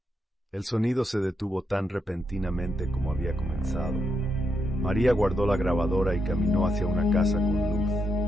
El sonido se detuvo tan repentinamente como había comenzado. María guardó la grabadora y caminó hacia una casa con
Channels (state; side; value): normal; both; correlation 0.81